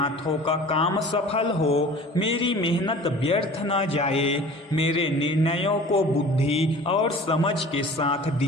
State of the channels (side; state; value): both; normal; correlation 0.43